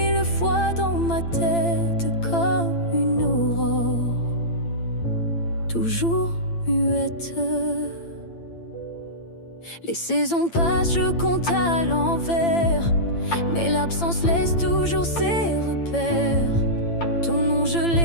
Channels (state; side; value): late; right; 8.8 ms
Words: fois dans ma tête comme une aurore, toujours muette. Les saisons passent, je compte à l'envers, mais l'absence laisse toujours ses repères. Ton nom je